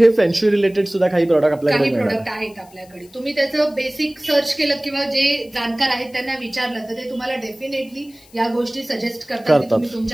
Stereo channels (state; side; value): noise; left; hiss, 27 dB below the sound